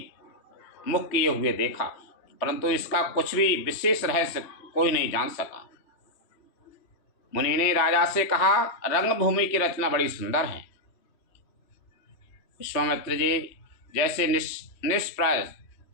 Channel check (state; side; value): late; right; 3.1 ms